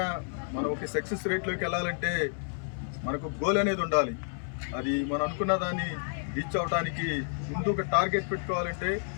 మనం ఒక సక్సెస్ రేట్లోకి వెళ్ళాలంటే మనకు గోల్ అనేది ఉండాలి. అది మనం అనుకున్న దాన్ని రీచ్ అవడానికి ముందు ఒక టార్గెట్ పెట్టుకోవాలంటే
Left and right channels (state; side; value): silent; right; digital silence